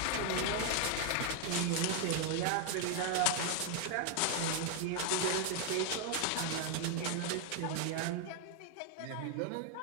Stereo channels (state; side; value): different; both; correlation 0.00